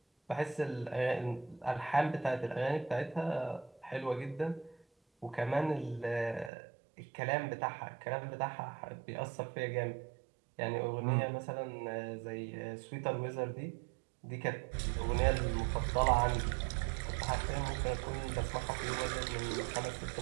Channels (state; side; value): drops out; left; at 6.5 s